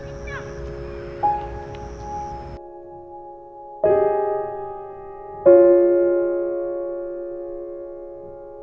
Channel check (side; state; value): both; identical; correlation 1.00